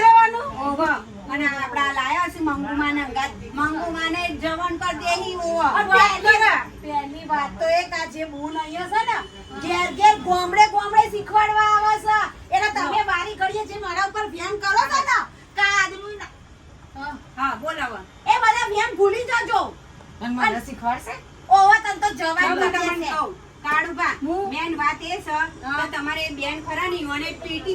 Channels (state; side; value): identical; both; correlation 1.00